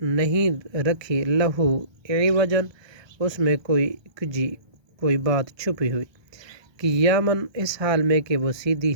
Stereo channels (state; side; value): late; left; 1.2 ms